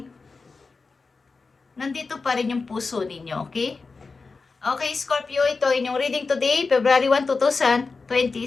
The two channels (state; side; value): quieter; right; 4.3 dB